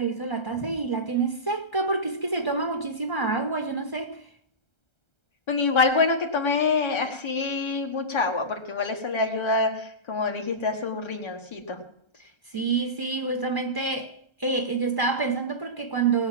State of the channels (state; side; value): late; right; 1.3 ms